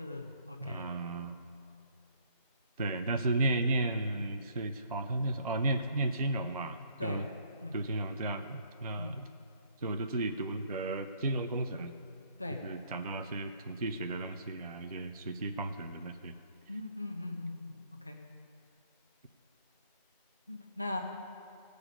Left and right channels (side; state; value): both; inverted; correlation -0.63